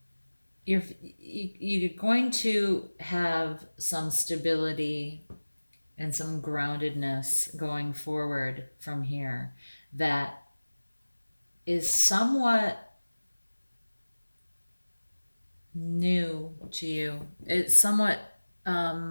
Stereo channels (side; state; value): both; inverted; correlation -1.00